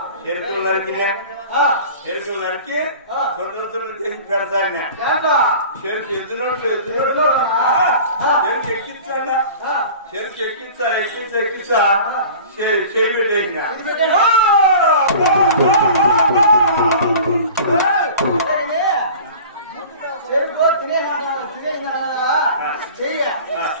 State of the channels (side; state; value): both; inverted; correlation -0.41